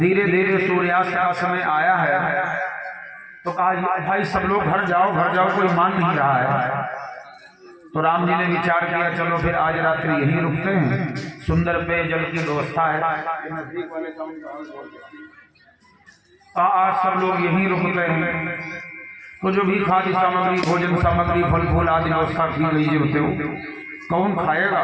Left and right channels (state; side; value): identical; both; correlation 1.00